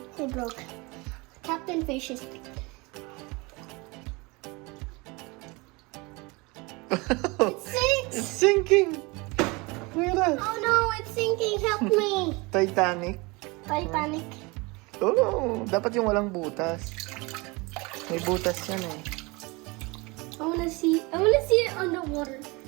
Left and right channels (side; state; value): left; quieter; 25.7 dB